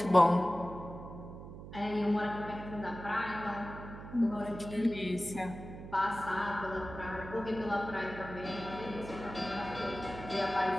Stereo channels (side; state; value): right; noise; hum, 12 dB below the sound